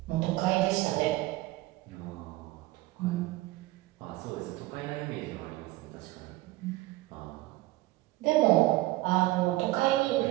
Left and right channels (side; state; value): left; quieter; 18.7 dB